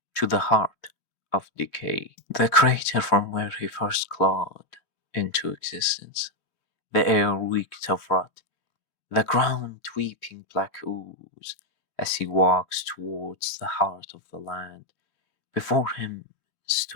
to the heart of decay. The crater from where he first clawed into existence. The air reeked of rot, the ground weeping black ooze, as he walks towards the heart of the land. Before him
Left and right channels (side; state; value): right; late; 3.0 ms